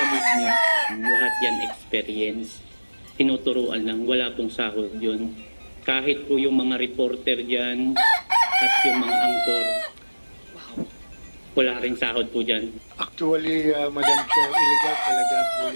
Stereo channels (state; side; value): inverted; both; correlation -1.00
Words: mood niya. Lahat yan experience, tinuturuan lang, wala pong sahod yun. Kahit po yung mga reporter dyan at yung mga angkor, wala rin sahod po dyan. Actually, Madam Chair, illegal talaga po